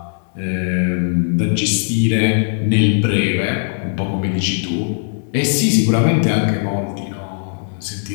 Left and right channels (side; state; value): right; silent; digital silence